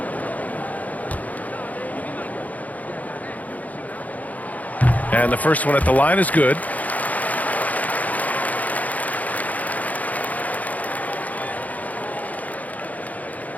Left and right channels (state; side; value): late; right; 0.076 ms